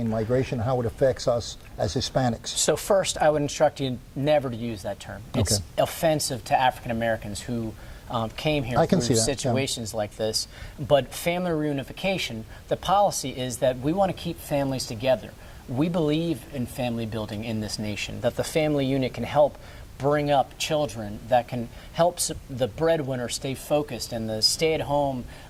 migration, how it affects us as Hispanics? So first, I would instruct you never to use that term. It's offensive to African Americans who came here through situations like this. But family reunification, the policy is that we want to keep families together. We believe in family building in this nation, that the family unit can help bring up children, that can help the breadwinner stay focused and the stay-at-home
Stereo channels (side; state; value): both; identical; correlation 1.00